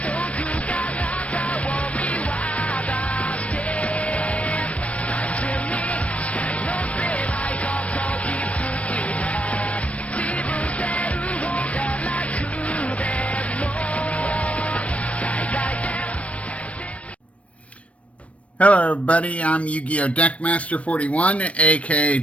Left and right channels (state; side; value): late; right; 0.064 ms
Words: Hello everybody, I'm Yu-Gi-Oh! Deckmaster 41, aka